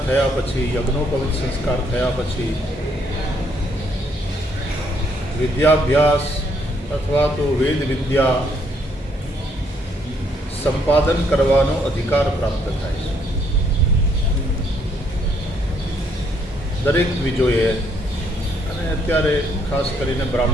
થયા પછી, યજ્ઞોપવિત સંસ્કાર થયા પછી વિદ્યાભ્યાસ અથવા તો વેદ વિદ્યા સંપાદન કરવાનો અધિકાર પ્રાપ્ત થાય છે. દરેક દ્વિજોએ અને અત્યારે ખાસ કરીને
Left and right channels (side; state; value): both; normal; correlation 0.70